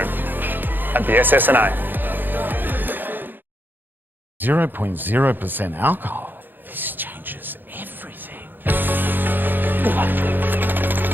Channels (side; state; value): left; late; 0.092 ms